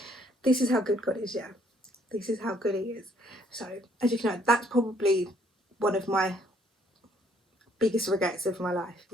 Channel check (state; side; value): normal; both; correlation 0.66